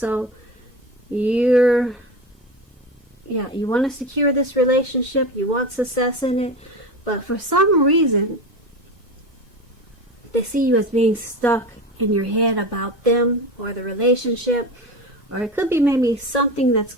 you want to secure this relationship, you want success in it, but for some reason they see you as being stuck in your head about them or the relationship, or it could be maybe something that's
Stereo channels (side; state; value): both; normal; correlation 0.25